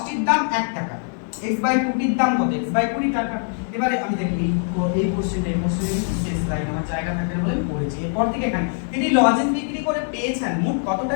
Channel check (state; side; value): silent; right; 57 dB below the other